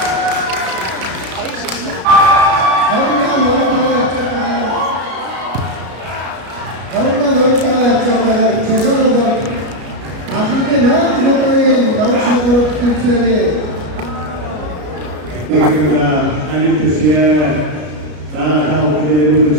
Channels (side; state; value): left; late; 33 ms